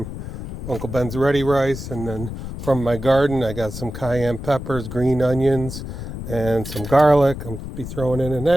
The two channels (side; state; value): left; noise; rumble, 8 dB below the sound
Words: Uncle Ben's ready rice, and then from my garden I got some cayenne peppers, green onions, and some garlic. I'll be throwing in an